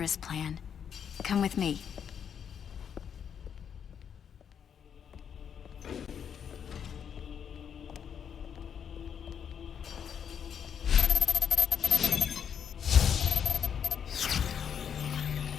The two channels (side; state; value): right; quieter; 7.9 dB